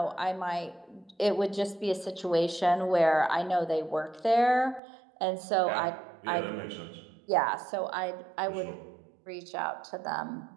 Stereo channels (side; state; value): left; drops out; at 4.8 s